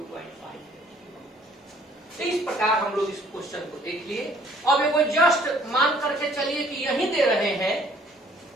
तो इस प्रकार हम लोग इस क्वेश्चन को देख लिए। अब एगो जस्ट मान करके चलिए कि यही दे रहे हैं,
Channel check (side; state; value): both; normal; correlation 0.58